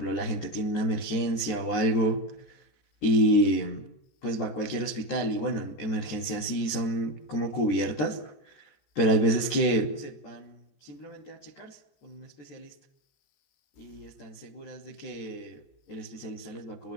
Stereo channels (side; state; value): right; late; 14 ms